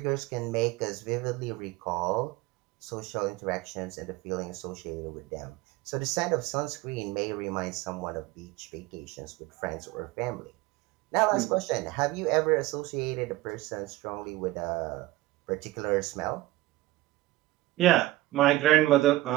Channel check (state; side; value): quieter; left; 17.4 dB